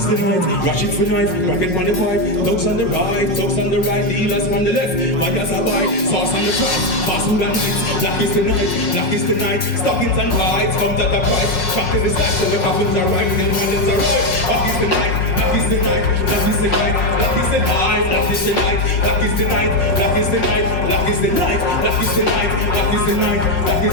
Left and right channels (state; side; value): late; right; 5.5 ms